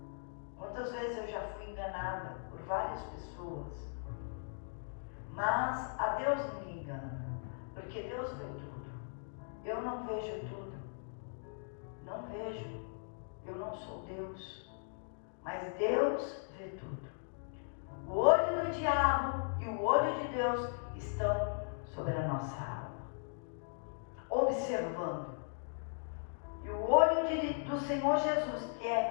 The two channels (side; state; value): right; silent; digital silence